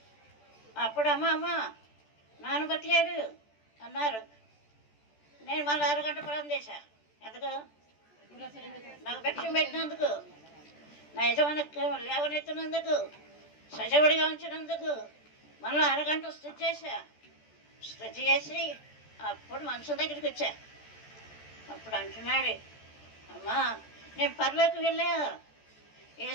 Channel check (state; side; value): late; right; 14 ms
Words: అప్పుడు అమ్మ నాన్న బతికాడు అన్నారు. నేను మళ్ళీ అరగంట ప్రాణం చేశా. ఎందుకు? నాకు భిక్షం పెట్టినందుకు, నా యజమాని లేవనెత్తినందుకు, సజీవుడిగా ఉంచినందుకు మళ్ళీ అరగంట స్థుతి చేశా. స్థుతి చేసి అప్పుడు మనుషుల దగ్గరికి వచ్చా. అప్పుడు అంటున్నాడు, అమ్మా నేను పరలోకి వెళ్ళా,